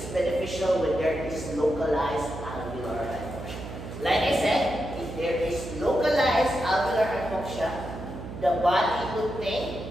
beneficial when there is localized alveolar hypoxia. Like I said, if there is localized alveolar hypoxia, the body would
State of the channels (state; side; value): noise; right; hum, 10 dB below the sound